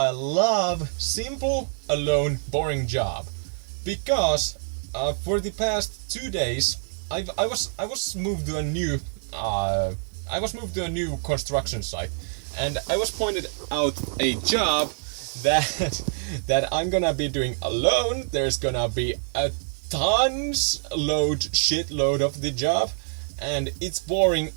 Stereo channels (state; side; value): silent; left; digital silence